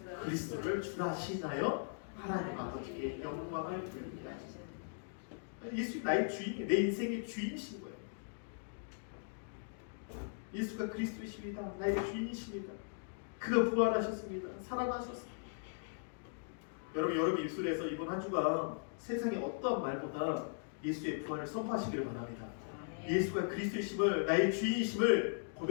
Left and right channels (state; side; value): silent; right; digital silence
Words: 그리스도를 주라 하시나요? 하나님 아버지께 영광을 돌리게 하시나요? 예수 나의 주인이, 내 인생의 주인이신 거예요. 예수가 그리스도이십니다. 나의 주인이십니다. 그가 부활하셨습니다. 살아나셨습니다. 여러분 입술에서 이번 한 주간 세상의 어떠한 말보다 예수의 부활을 선포하시기를 바랍니다. 예수가 그리스도이심을, 나의 주인이심을